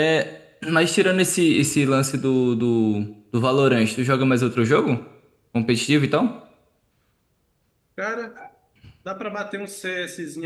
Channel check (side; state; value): both; identical; correlation 1.00